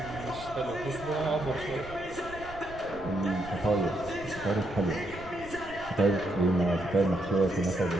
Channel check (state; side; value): noise; right; rumble, 16 dB below the sound